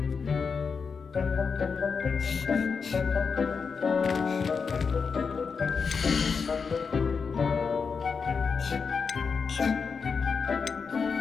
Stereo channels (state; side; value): quieter; right; 5.5 dB